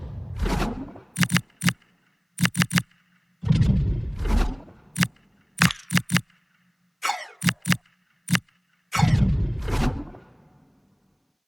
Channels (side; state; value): both; identical; correlation 1.00